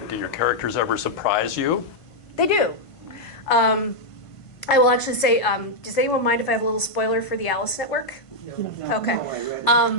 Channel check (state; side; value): late; right; 1.5 ms